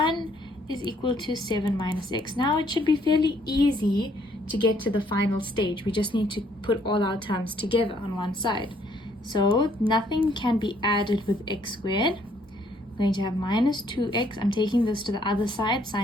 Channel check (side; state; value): both; normal; correlation 0.66